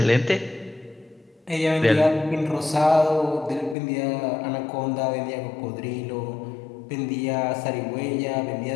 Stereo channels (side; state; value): right; drops out; at 3.8 s